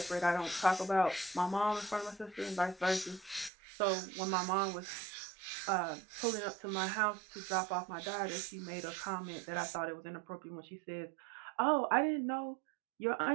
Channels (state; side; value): drops out; left; at 3.5 s